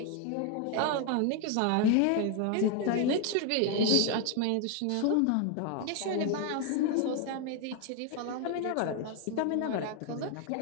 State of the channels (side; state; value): both; different; correlation 0.01